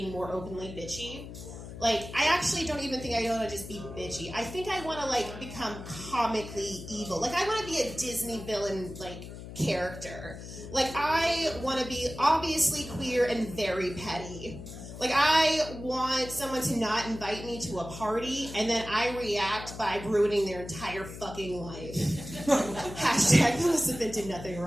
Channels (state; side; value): noise; left; hum, 12 dB below the sound